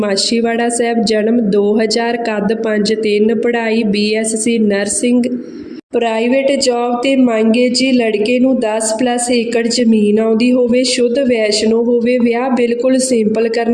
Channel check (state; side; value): identical; both; correlation 1.00